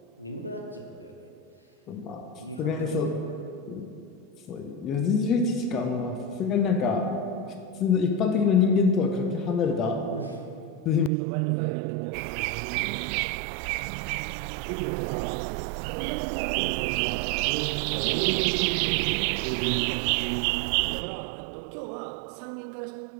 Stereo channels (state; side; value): drops out; left; at 11.1 s